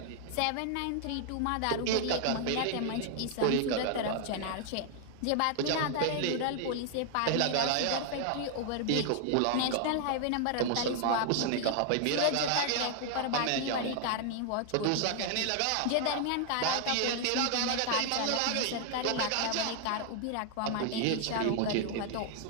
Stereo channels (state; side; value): different; both; correlation 0.00